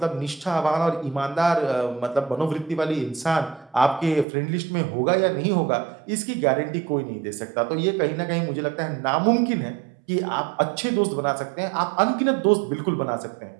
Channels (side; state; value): left; drops out; at 4.2 s